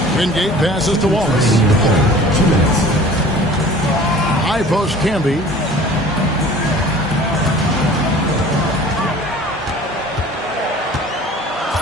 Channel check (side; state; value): both; normal; correlation 0.45